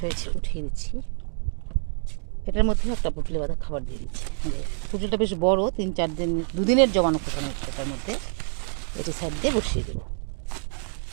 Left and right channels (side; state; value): left; silent; 56 dB below the other